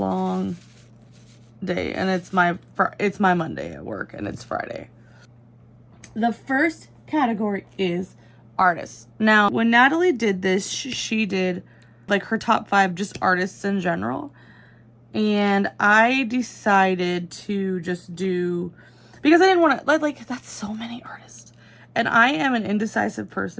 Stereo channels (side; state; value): both; identical; correlation 1.00